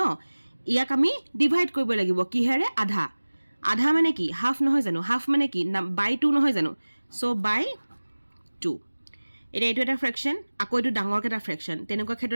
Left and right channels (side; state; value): both; inverted; correlation -1.00